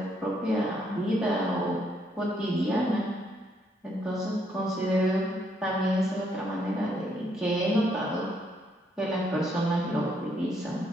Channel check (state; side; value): normal; both; correlation 0.72